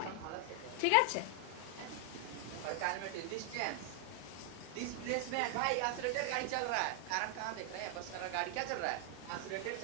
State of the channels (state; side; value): different; both; correlation 0.00